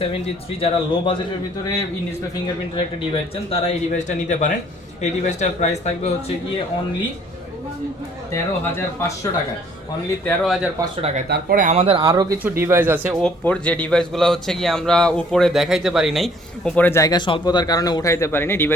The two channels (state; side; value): normal; both; correlation 0.59